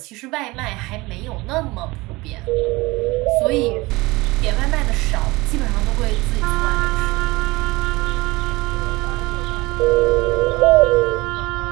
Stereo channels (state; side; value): quieter; left; 21.9 dB